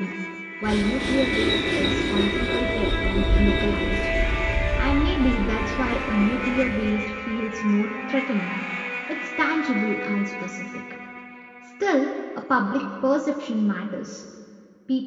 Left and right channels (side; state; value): both; identical; correlation 1.00